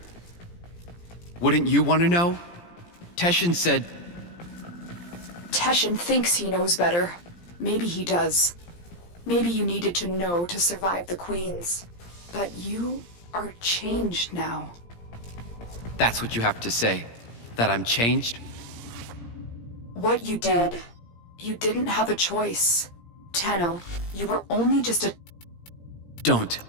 Wouldn't you want to know? Teshin said... Teshin thinks he knows better. Maybe he does. Maybe you needed to know to survive the Queens. But you are changed now. That's what you have to say? That I'm changed? What you did, you didn't have a choice. Tenno, you were only just a... Don't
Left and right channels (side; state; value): right; late; 17 ms